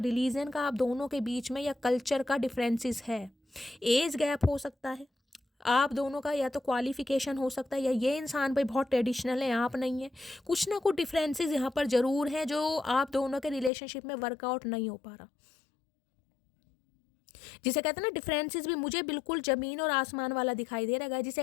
का आप दोनों के बीच में या कल्चर का डिफरेंसेस है, एज गैप हो सकता है आप दोनों का, या तो क्वालिफिकेशन हो सकता है, या ये इंसान भाई बहुत ट्रेडिशनल है आप नहीं है। कुछ ना कुछ डिफरेंसेस यहाँ पर ज़रूर हैं जो आप दोनों के रिलेशनशिप में वर्कआउट नहीं हो पा रहा, जिसे कहते हैं ना डिफरेंसेस भी मुझे बिल्कुल ज़मीन और आसमान वाला दिखाई दे रहा है।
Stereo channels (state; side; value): drops out; right; at 13.7 s